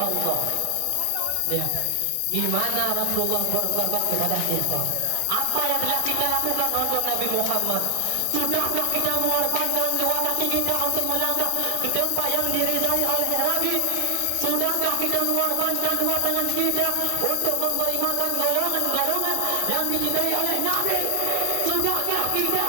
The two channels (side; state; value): both; different; correlation 0.00